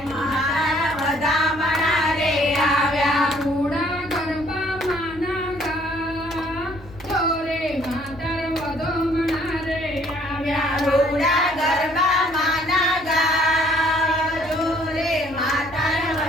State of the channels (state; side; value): noise; left; hum, 20 dB below the sound